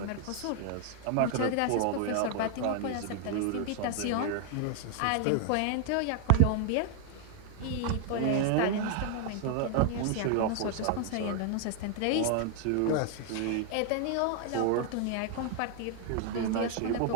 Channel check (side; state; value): both; different; correlation 0.00